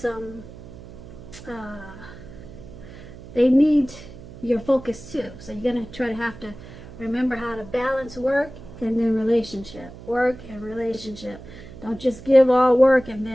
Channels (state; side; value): noise; right; hum, 16 dB below the sound